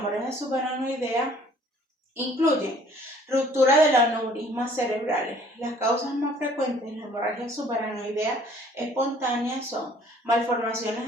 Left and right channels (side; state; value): both; normal; correlation 0.56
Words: subaracnoidea Incluyen ruptura de los aneurismas cerebrales. Las causas más frecuentes de la hemorragia subaracnoidea espontánea son